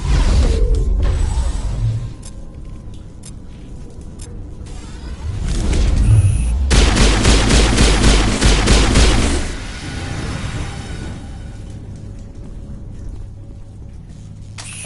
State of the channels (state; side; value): identical; both; correlation 1.00